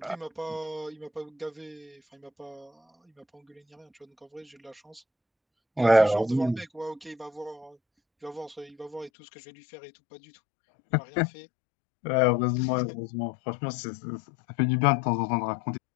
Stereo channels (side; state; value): right; drops out; at 9.1 s